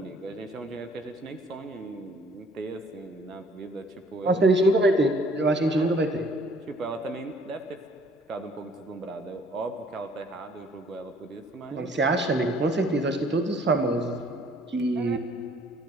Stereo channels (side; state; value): both; normal; correlation 0.59